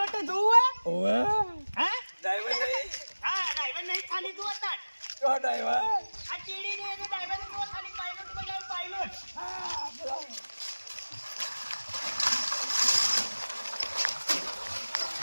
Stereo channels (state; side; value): inverted; both; correlation -1.00